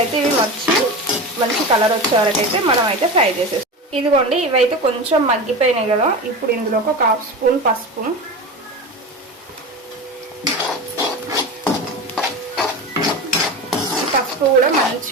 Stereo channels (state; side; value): normal; both; correlation 0.27